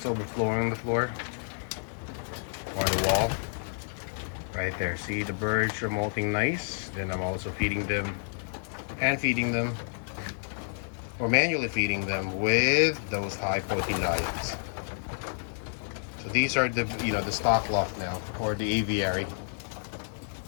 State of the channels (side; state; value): right; silent; 58 dB below the other